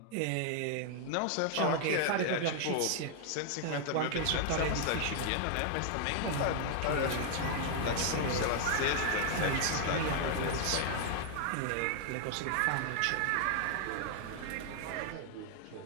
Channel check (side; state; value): both; different; correlation 0.00